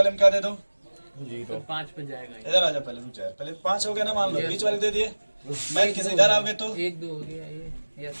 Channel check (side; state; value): both; inverted; correlation -1.00